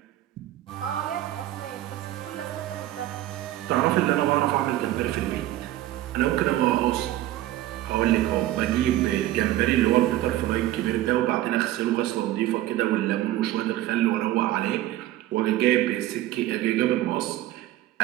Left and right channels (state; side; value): quieter; left; 14.6 dB